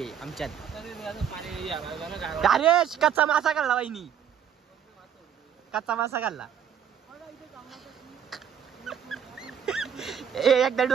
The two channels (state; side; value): quieter; left; 8.4 dB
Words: आहे आमच्यात. अरे कच्चा मासा खाल्ला बाईनी. कच्चा मासा खाल्ला. एकदा